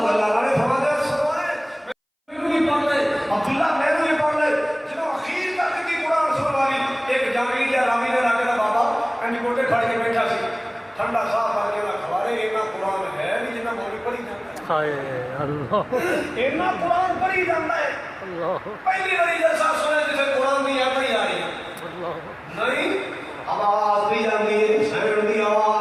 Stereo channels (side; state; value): both; identical; correlation 1.00